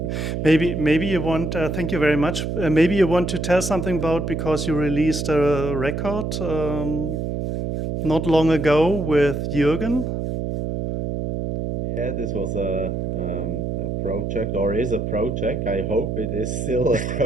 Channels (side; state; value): right; noise; hum, 2 dB below the sound